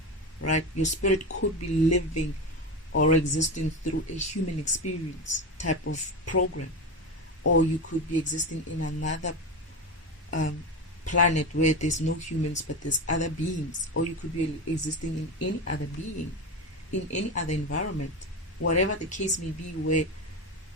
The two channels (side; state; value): both; normal; correlation 0.20